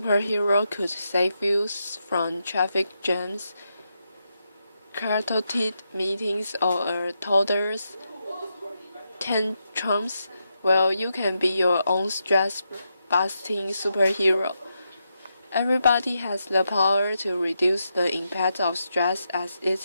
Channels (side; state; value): both; inverted; correlation -0.84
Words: could save you from traffic jams, chaotic meetings, or a toddler's tantrums? Well, you can be your own stress-busting superhero. Everybody has the power to reduce the impact of stress as it's